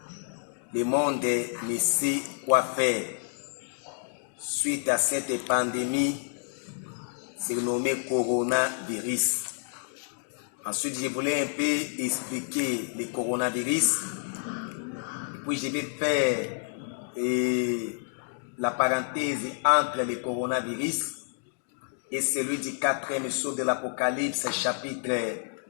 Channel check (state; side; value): silent; right; digital silence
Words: le monde ne sait quoi faire. Suite à cette pandémie surnommée coronavirus. Ensuite, je voulais un peu expliquer le coronavirus. Et puis, je vais faire la parenthèse entre le coronavirus et celui du 4e sceau de l'Apocalypse, chapitre